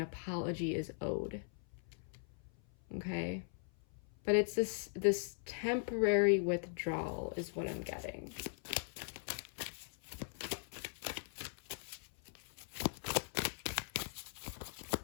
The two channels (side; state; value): right; silent; 51 dB below the other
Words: is owed. Okay? But it's this temporary withdrawal is what I'm getting.